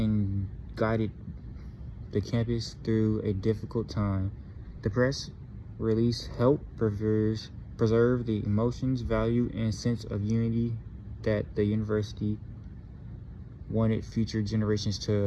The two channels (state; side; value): identical; both; correlation 1.00